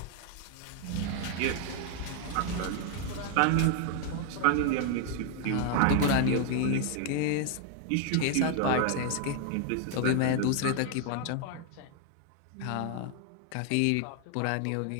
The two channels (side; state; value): both; different; correlation 0.00